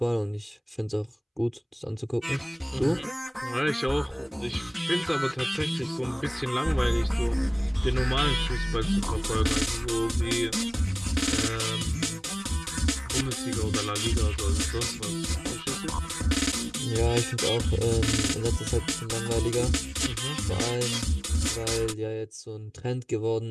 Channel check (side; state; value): both; identical; correlation 1.00